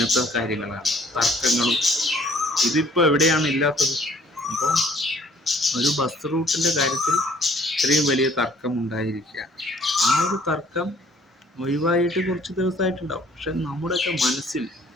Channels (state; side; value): normal; both; correlation 0.59